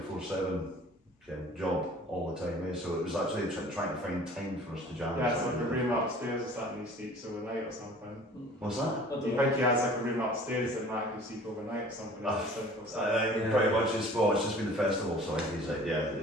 job all the time, so it was actually trying to find time for us to jam. Yeah, it's like a room upstairs or something, he sleeps overnight or something. What's that? Do you think he has like a room upstairs that Matt can sleep overnight or something? Pretty much it's just been the festival, so I think he's like,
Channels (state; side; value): normal; both; correlation 0.47